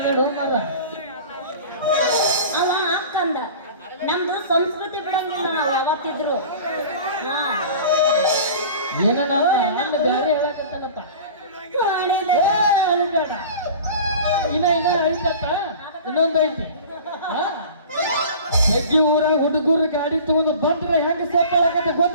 ಮಾರ ಅವ ಅಕ್ಕಂದ ನಮ್ದು ಸಂಸ್ಕೃತಿ ಬಿಡಂಗಿಲ್ಲ ನಾವು ಯಾವತ್ತಿದ್ರು ಏನ ಅಣ್ಣ ಬ್ಯಾರೆ ಹೇಳಕತ್ತಾನಪ್ಪ ಮಾಡಿದೆ ಅಳಿಬೇಡ ಇನ್ನ ಐತತ್ತ ಇನ್ನೊಂದು ಐತಿ ಹೆಗ್ಗಿ ಊರಾಗ ಹುಡುಗರು ಗಾಡಿ ತಗೊಂಡು ಬಂದ್ರೆ ಹೆಂಗ ಸೇರ್ಕೊಳ್ಳಕತ್ತ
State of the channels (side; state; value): both; inverted; correlation -0.40